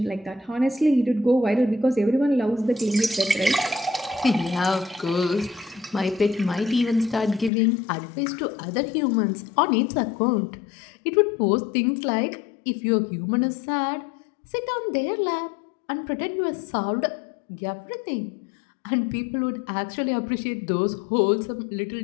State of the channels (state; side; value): drops out; right; at 7.5 s